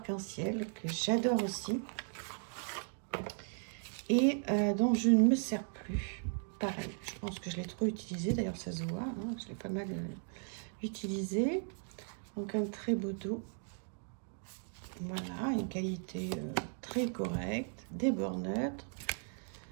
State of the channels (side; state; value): left; silent; 53 dB below the other